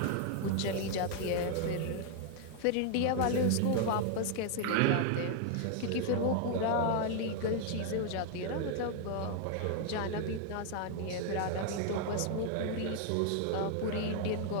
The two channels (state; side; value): different; both; correlation 0.00